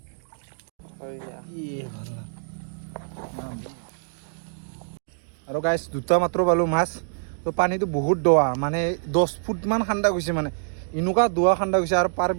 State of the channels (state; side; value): silent; left; digital silence